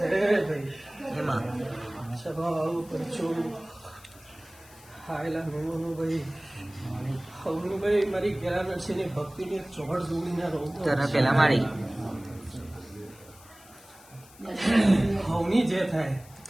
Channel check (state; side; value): noise; left; hiss, 23 dB below the sound